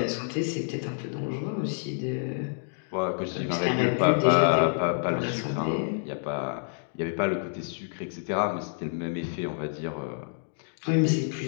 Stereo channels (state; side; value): silent; right; digital silence